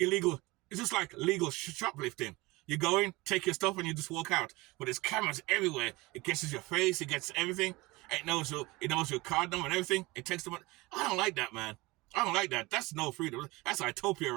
It's just like legal shoplifting. You go in, take your stuff, and you just walk out. But there's cameras everywhere. It gets your face. It gets everything. It knows your card number and everything. It takes the money. I don't like that, man. I don't like that. That's no freedom. That's utopia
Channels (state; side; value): quieter; left; 22.4 dB